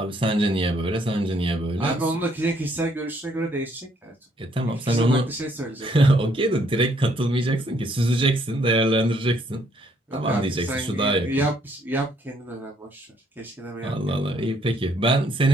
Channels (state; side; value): normal; both; correlation 0.67